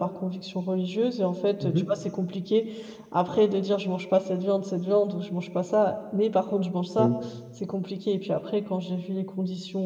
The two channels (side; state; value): both; identical; correlation 1.00